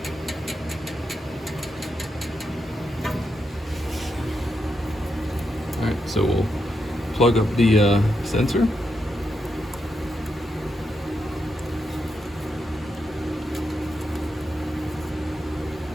Alright, so we'll plug up the sensor. And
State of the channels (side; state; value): both; normal; correlation 0.84